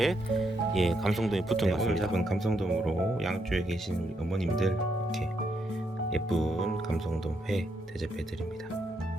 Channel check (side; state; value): both; normal; correlation 0.78